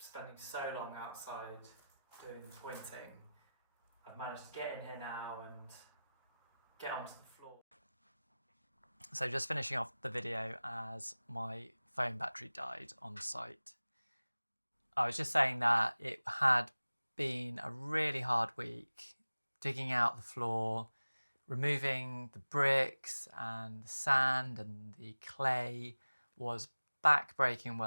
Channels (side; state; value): both; inverted; correlation -0.97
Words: so long outside doing pointing, I've managed to get in here now and get onto the floor. So just finishing off the video as my phone battery died on site. I was just saying that it had been a really hard week, digging out the floor, removing the bricks and the sand and the clay was back-breaking